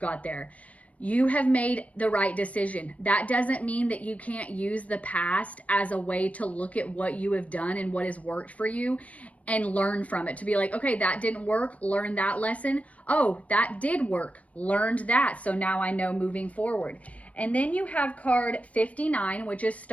there. You have made the right decision. That doesn't mean that you can't use the past as a way to look at what you have done and what has worked for you and learn from it. To be like, okay, that didn't work, learn that lesson. Oh, that did work, learned that. So now I know moving forward. And then you have card 59, which is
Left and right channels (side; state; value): right; late; 0.067 ms